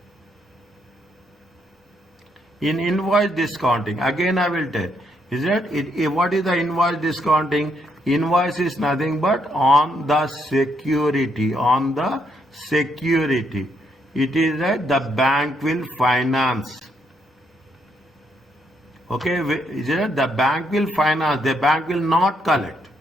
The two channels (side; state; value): both; normal; correlation 0.75